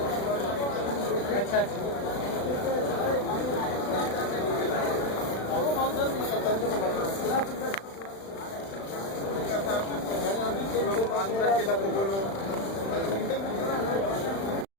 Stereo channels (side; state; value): right; late; 36 ms